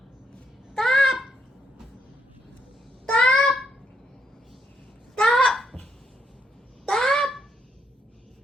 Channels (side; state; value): both; normal; correlation 0.77